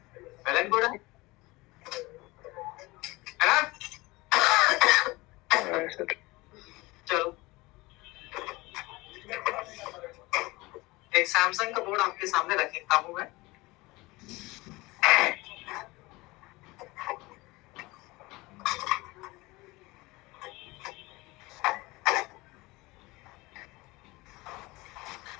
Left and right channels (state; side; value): quieter; right; 22.1 dB